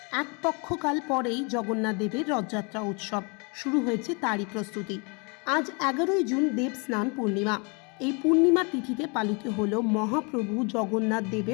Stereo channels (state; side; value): quieter; right; 32.5 dB